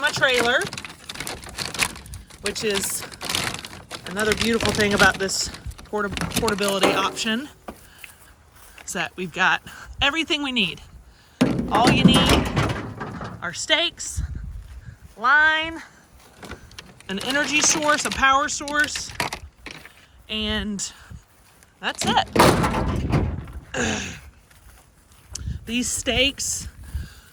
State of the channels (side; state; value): both; identical; correlation 1.00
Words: trailer, which is another beautiful thing about this portability option, is that we've got everything we need. All you need are stakes, line, an energy source, a power source, and that's it. These stakes